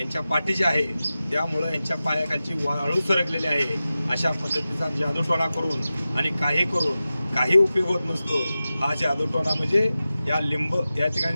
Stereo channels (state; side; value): inverted; both; correlation -0.94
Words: पाठीचे आहे, त्यामुळं यांच्या पायाखालची वाळू सरकलेली आहे। अशा पद्धतीचा जादूटोणा करून आणि काही करून काही उपयोग होत नसतो। हा जादूटोणा म्हणजे या